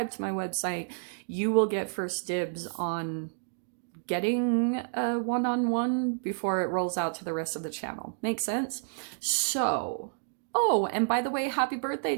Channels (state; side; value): silent; left; digital silence